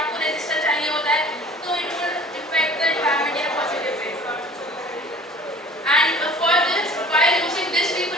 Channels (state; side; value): normal; both; correlation 0.46